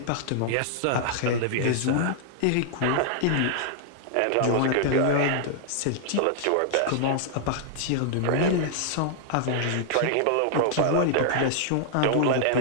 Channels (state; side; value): different; both; correlation -0.01